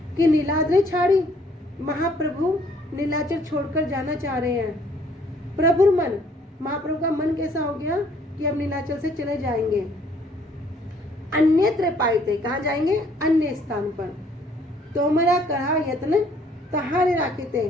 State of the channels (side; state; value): both; normal; correlation 0.62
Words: कि नीलाद्रि छाड़ी, महाप्रभु नीलाचल छोड़कर जाना चाह रहे हैं। प्रभुर मन, महाप्रभु का मन कैसा हो गया कि अब नीलाचल से चले जाएंगे। अन्यत्र पाइते, कहाँ जाएंगे, अन्य स्थान पर। तोमरा करहा यत्न तहारे राखीते,